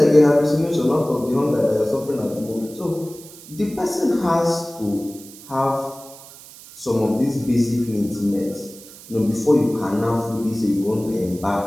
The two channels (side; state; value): right; noise; hiss, 19 dB below the sound